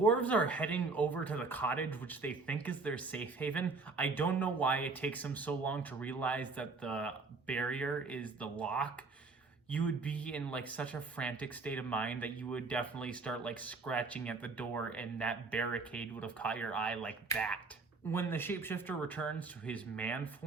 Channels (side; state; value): left; quieter; 4.0 dB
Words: are heading over to the cottage, which they think is their safe haven, I don't know why it takes them so long to realize that the barrier is the lock. You would be in like such a frantic state of mind that you would definitely start like scratching at the door, and that barricade would have caught your eye like that. When the shapeshifter returns to his man